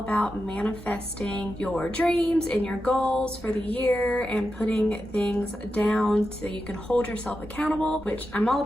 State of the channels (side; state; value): both; normal; correlation 0.89